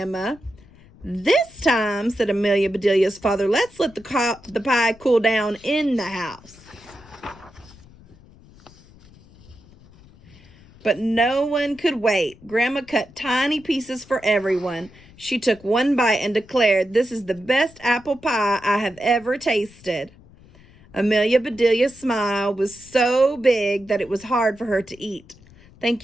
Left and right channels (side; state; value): left; noise; rumble, 24 dB below the sound